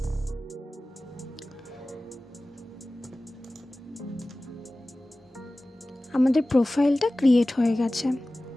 আমাদের প্রোফাইলটা ক্রিয়েট হয়ে গেছে।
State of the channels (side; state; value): both; normal; correlation 0.97